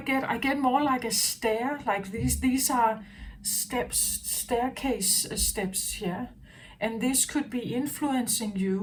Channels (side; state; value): both; identical; correlation 1.00